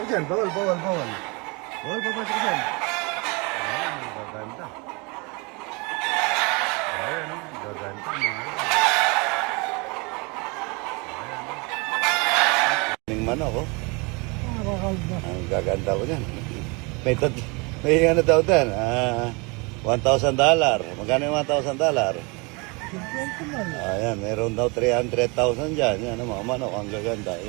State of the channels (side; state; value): left; quieter; 29.1 dB